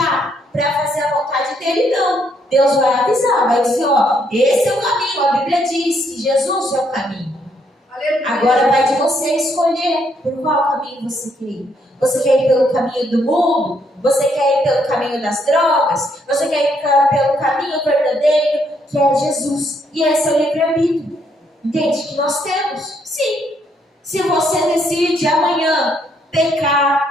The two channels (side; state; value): both; normal; correlation 0.72